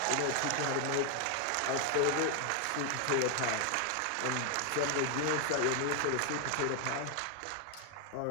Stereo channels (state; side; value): different; both; correlation 0.00